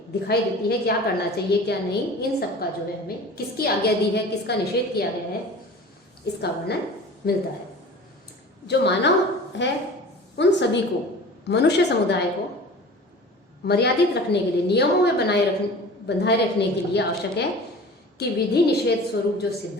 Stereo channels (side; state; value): both; normal; correlation 0.40